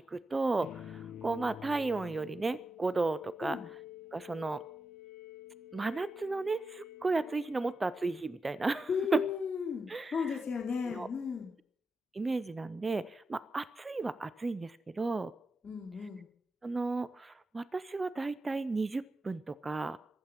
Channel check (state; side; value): normal; both; correlation 0.89